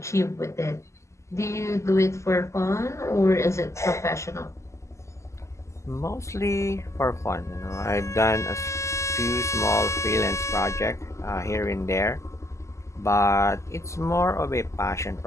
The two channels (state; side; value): late; right; 0.14 ms